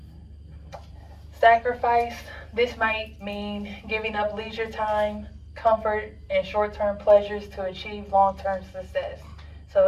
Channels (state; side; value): identical; both; correlation 1.00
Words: Sacrifice. This might mean giving up leisure time, comfort, and short-term pleasures to achieve long-term success. So